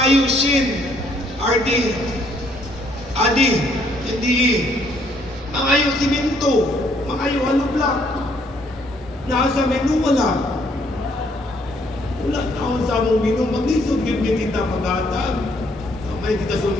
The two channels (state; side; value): normal; both; correlation 0.67